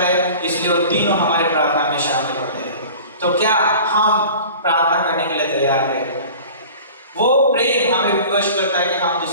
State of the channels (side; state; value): both; inverted; correlation -0.41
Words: इसलिए वो तीनों हमारे प्रार्थना में शामिल होते हैं। तो क्या हम प्रार्थना करने के लिए तैयार हैं? वो प्रेम हमें विवश करता है कि हम